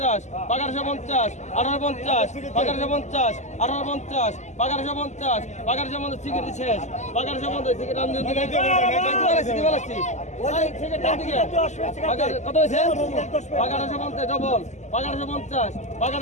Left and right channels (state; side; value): late; right; 0.34 ms